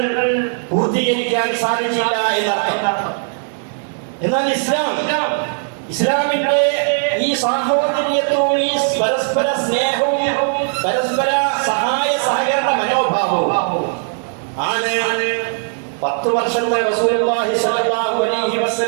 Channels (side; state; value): left; silent; digital silence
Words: പൂർത്തീകരിക്കാൻ സാധിച്ചില്ല എന്നർത്ഥം. എന്നാൽ ഇസ്ലാം ഇസ്ലാമിന്റെ ഈ സാഹോദര്യത്വവും ഈ പരസ്പര സ്നേഹവും പരസ്പര സഹായ സഹകരണ മനോഭാവവും ആണ് 10 വർഷത്തെ റസൂലുള്ളാഹി സ്വല്ലല്ലാഹു അലൈഹി